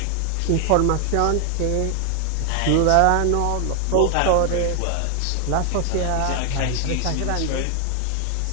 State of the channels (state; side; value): different; both; correlation 0.00